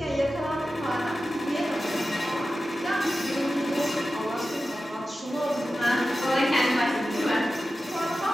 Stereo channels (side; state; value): both; normal; correlation 0.93